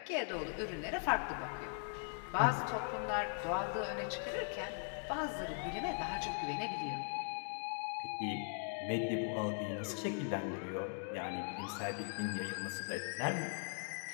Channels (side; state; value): right; silent; 51 dB below the other